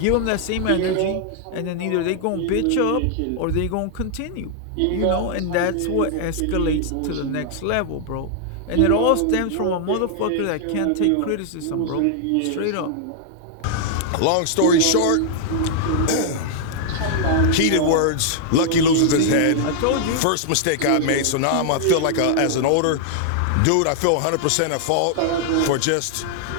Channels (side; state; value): both; different; correlation -0.01